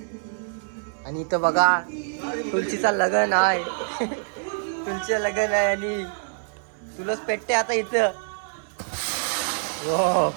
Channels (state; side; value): silent; left; 62 dB below the other